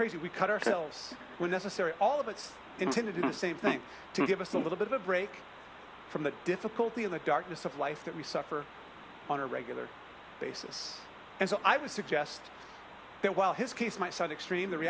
We cut ourselves when necessary. All of it's intended to do the same thing, to give us a little bit of a break from the difficulty and the darkness of life that we suffer on a regular basis. And so I would suggest that while his case might sound extreme, the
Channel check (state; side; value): identical; both; correlation 1.00